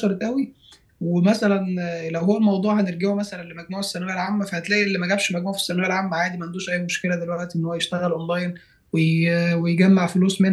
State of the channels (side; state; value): both; identical; correlation 1.00